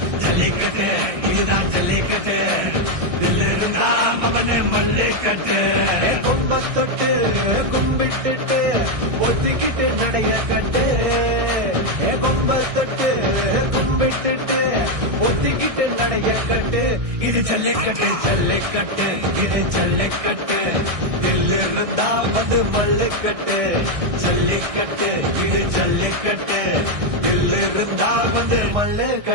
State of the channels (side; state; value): left; late; 1.6 ms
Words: ஜல்லிக்கட்டு இதுதான் ஜல்லிக்கட்டு தில்லு இருந்தா அவனு மல்லிக்கட்டு கும்பத்தொட்டு கும்பிட்டுட்டு ஒத்திக்கிட்டு நடைய கட்டு கும்பத்தொட்டு கும்பிட்டுட்டு ஒத்திக்கிட்டு நடைய கட்டு இது ஜல்லிக்கட்டு ஜல்லிக்கட்டு இது ஜல்லிக்கட்டு தில்லு இருந்தா வந்து மல்லுக்கட்டு ஜல்லிக்கட்டு இது ஜல்லிக்கட்டு தில்லு இருந்தா வந்து